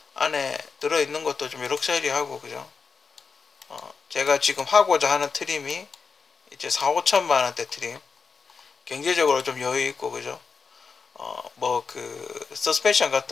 안에 들어있는 것도 좀 럭셔리하고, 그죠? 제가 지금 하고자 하는 트림이 이제 4, 5천만 원대 트림, 경제적으로 좀 여유 있고, 그죠? 뭐 그 서스펜션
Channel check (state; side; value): quieter; right; 5.2 dB